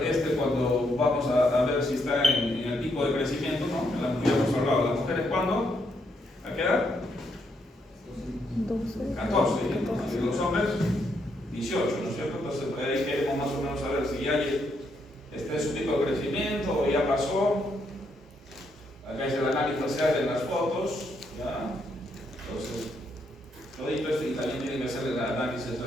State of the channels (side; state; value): both; normal; correlation 0.76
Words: cuando vamos a ver si está en el pico de crecimiento, ¿no? Ya hemos hablado, las mujeres, ¿cuándo? ¿A qué edad? 14, y los hombres 18, ¿no es cierto? Entonces ahí queremos más o menos saber si ya está en su pico de crecimiento o ya pasó. Acá es el análisis facial de las fotos, ¿ya? Entonces, todito esto, y también tienen que hacer el análisis